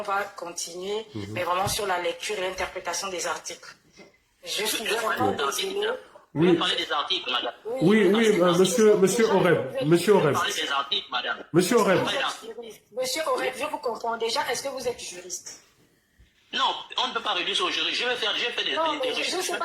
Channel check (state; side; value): identical; both; correlation 1.00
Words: va continuer, mais vraiment sur la lecture et l'interprétation des articles. Je suis vraiment désolée. Vous pouvez parler des articles, madame. Oui, monsieur Oreb. Monsieur Oreb. Parler des articles, madame. Monsieur Oreb. Monsieur Oreb, je vous comprends déjà. Est-ce que vous êtes juriste? Non, on ne peut pas réduire ça au juriste. J'ai fait des recherches. Je ne sais